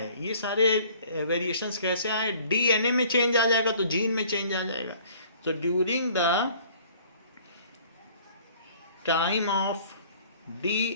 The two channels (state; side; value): inverted; both; correlation -0.53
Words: ये सारे वेरिएशंस कैसे आए? DNA में चेंज आ जाएगा तो जीन में चेंज आ जाएगा। तो during the time of